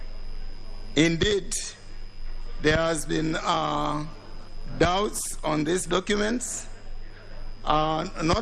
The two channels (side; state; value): both; identical; correlation 1.00